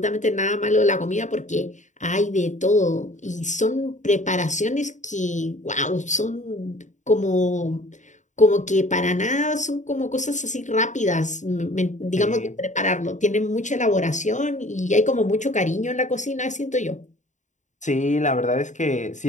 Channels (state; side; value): late; right; 0.35 ms